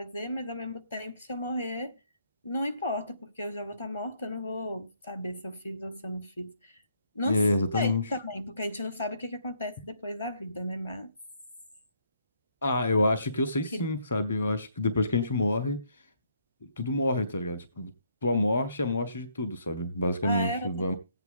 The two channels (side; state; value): both; inverted; correlation -0.69